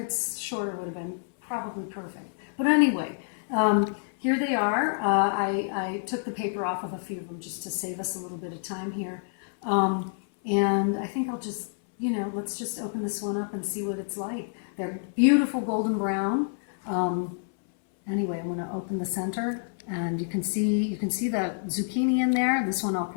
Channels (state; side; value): silent; right; 59 dB below the other